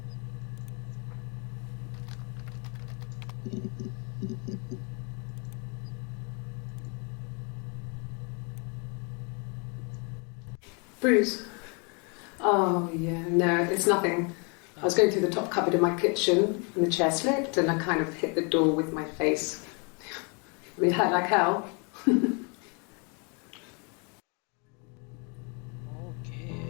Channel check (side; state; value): right; quieter; 34.7 dB